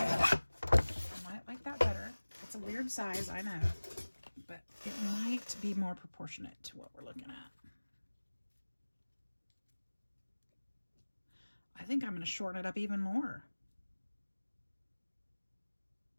might like that better. It's a weird size, I know, but it might be more proportionate to what we're looking at. I think I'm going to shorten it up even more.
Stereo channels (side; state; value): both; inverted; correlation -1.00